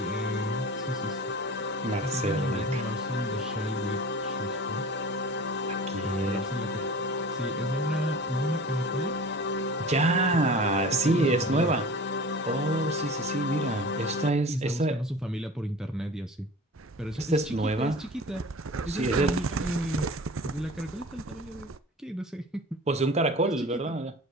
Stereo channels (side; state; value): both; normal; correlation 0.38